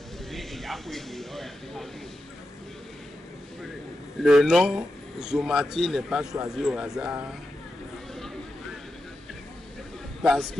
le nom Somati n'est pas choisi au hasard parce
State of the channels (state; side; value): normal; both; correlation 0.89